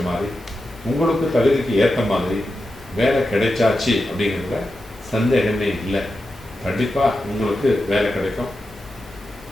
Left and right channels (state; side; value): normal; both; correlation 0.90